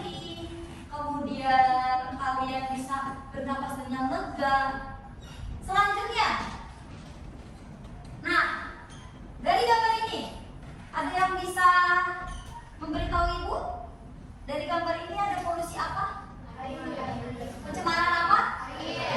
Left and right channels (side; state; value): both; identical; correlation 1.00